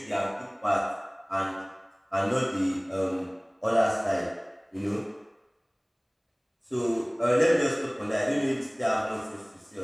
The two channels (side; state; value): both; identical; correlation 1.00